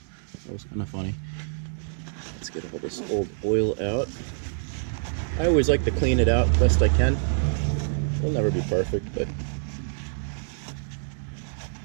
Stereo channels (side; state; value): left; silent; digital silence